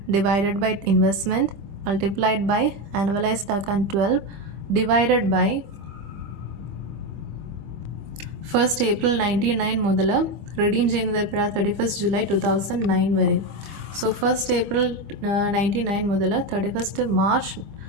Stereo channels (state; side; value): late; left; 25 ms